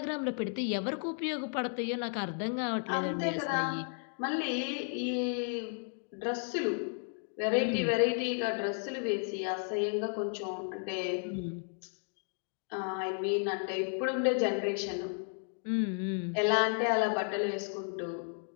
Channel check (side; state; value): right; silent; 55 dB below the other